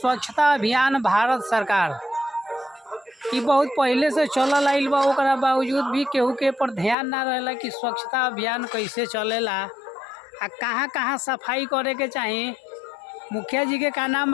अभियान भारत सरकार ई बहुत पहले से चलल आइल बा, ओकरा बावजूद भी केहू के पर ध्यान ना रहेला कि स्वच्छता अभियान कैसे चलेला आ कहाँ कहाँ सफाई करे के चाही। मुखिया जी के का नाम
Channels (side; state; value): right; drops out; at 7.0 s